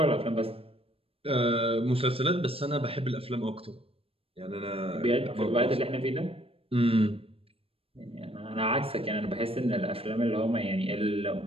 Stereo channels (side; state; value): left; late; 0.28 ms